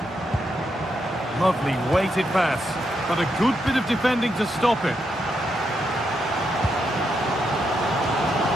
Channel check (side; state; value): both; normal; correlation 0.81